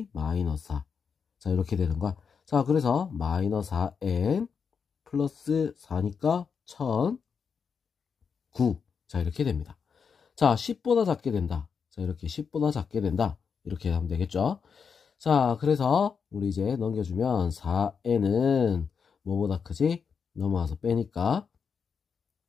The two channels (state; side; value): quieter; right; 6.2 dB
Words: -4. 자, 이렇게 되는 거야. 자, 그래서 -4n 플러스 4니까 1009. 자, 이렇게 됩니다. 자, 10보다 작게 된다. 자, 이렇게 10보다 작게 된다. 이렇게 하면 되겠죠. 자, 그래서 우리 이제 넘겨주면 4n은 뭐보다 크지? 넘어와서 빼니까